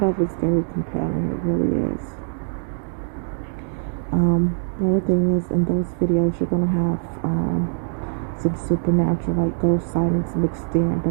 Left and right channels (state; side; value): silent; left; digital silence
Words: of it's very compelling. It really is. The only thing is, in those videos, you're gonna have some supernatural, like ghost sightings mixed in,